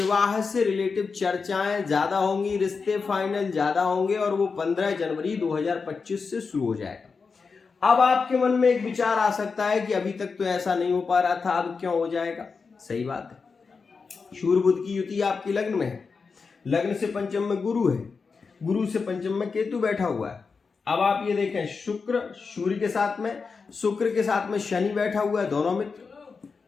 से रिलेटिव चर्चाएं ज्यादा होंगी, रिश्ते फाइनल ज्यादा होंगे और वो 15 जनवरी 2025 से शुरू हो जाएगा। अब आपके मन में एक विचार आ सकता है कि अभी तक तो ऐसा नहीं हो पा रहा था, अब क्यों हो जाएगा? सही बात है, सूर्य बुध की युति आपकी लग्न में है, लग्न से पंचम में गुरु है, गुरु से पंचम में केतु बैठा हुआ है। अब आप ये देखें, शुक्र सूर्य के साथ में, शुक्र के साथ में शनि बैठा हुआ है,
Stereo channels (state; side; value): quieter; right; 4.9 dB